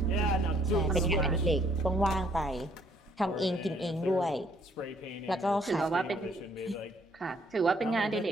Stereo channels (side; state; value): both; normal; correlation 0.65